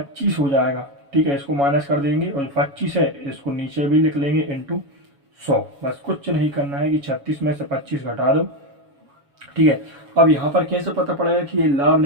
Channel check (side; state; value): left; late; 7.2 ms